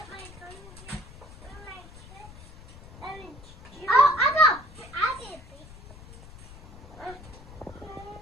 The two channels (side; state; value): left; noise; rumble, 18 dB below the sound